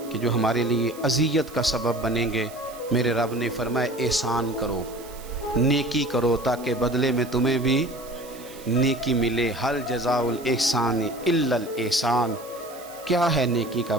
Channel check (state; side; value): noise; right; hiss, 19 dB below the sound